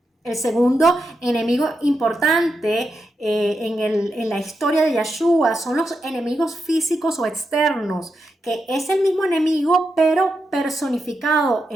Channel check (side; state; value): both; normal; correlation 0.86